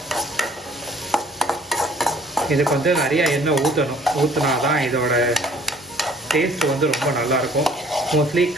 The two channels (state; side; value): normal; both; correlation 0.56